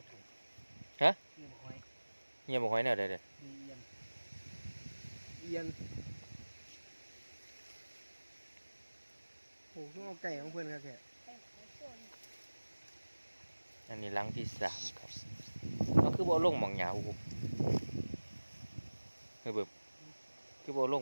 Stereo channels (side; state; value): both; inverted; correlation -1.00